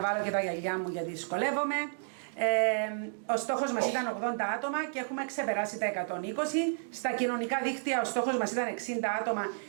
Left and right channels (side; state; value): left; silent; digital silence